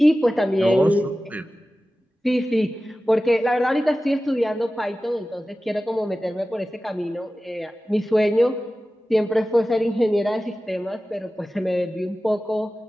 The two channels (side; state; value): both; normal; correlation 0.95